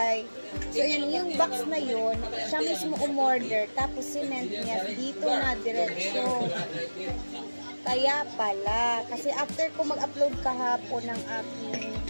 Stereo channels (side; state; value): both; inverted; correlation -1.00